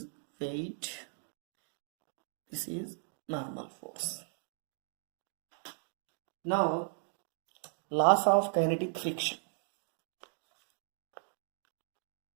weight, this is normal force. Now Laws of kinetic friction.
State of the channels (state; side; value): silent; left; digital silence